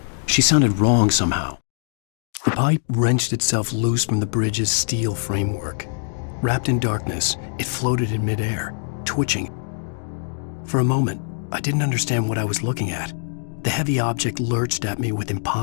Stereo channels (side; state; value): right; silent; digital silence